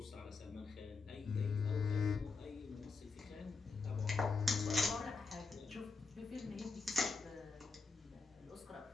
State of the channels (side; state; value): right; quieter; 4.3 dB